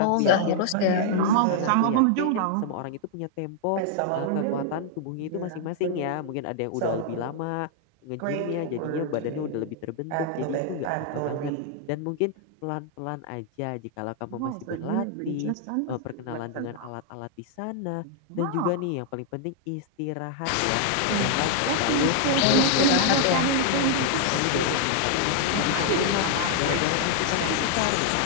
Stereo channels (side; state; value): both; different; correlation 0.00